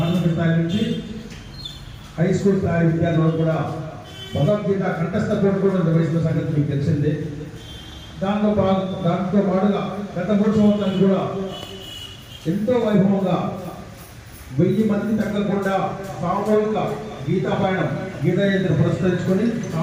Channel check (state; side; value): identical; both; correlation 1.00